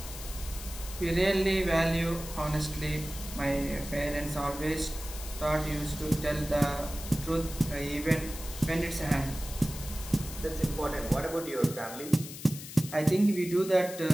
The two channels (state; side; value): noise; left; hiss, 12 dB below the sound